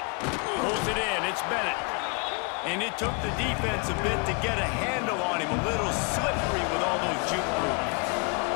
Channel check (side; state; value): right; quieter; 33.6 dB